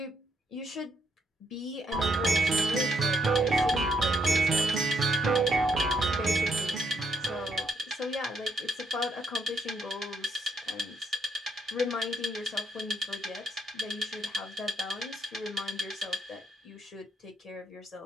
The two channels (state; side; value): normal; both; correlation 0.73